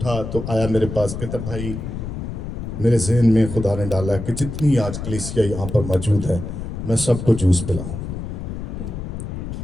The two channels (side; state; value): left; noise; rumble, 6 dB below the sound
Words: तो आया मेरे पास, कहता भाई मेरे जहन में खुदा ने डाला कि जितनी आज कलीसिया यहाँ पर मौजूद है मैं सबको जूस पिलाऊं।